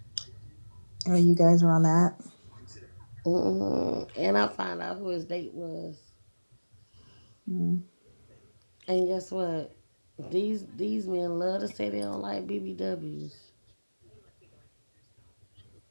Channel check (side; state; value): both; inverted; correlation -1.00